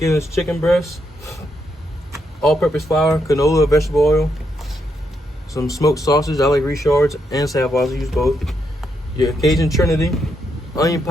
chicken breasts, all-purpose flour, canola, vegetable oil, some smoked sausage. I like Richards and Savoy's. I use both. Your Cajun Trinity, onion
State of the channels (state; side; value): normal; both; correlation 0.79